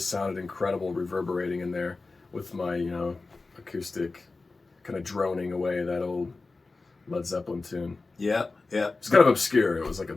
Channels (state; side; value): quieter; right; 3.7 dB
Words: sounded incredible reverberating in there with my, acoustic kind of droning away that old Led Zeppelin tune. Yeah. It's kind of obscure. It was like a